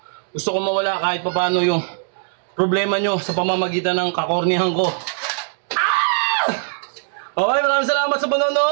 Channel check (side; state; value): left; silent; digital silence